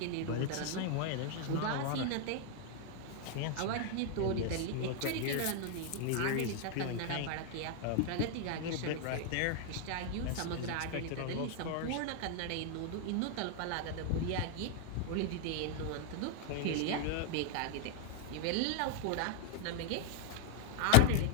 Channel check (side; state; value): both; different; correlation 0.00